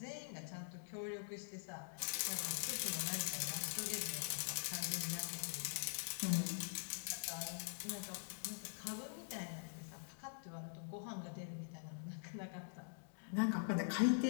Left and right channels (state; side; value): silent; right; digital silence